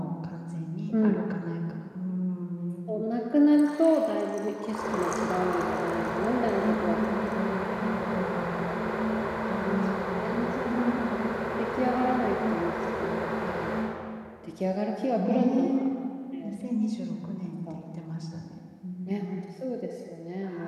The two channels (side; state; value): both; identical; correlation 1.00